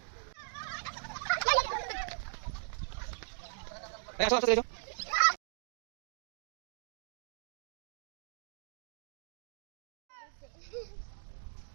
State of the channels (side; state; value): left; silent; digital silence